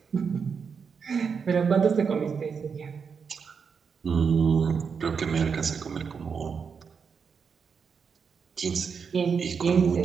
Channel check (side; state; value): left; quieter; 6.0 dB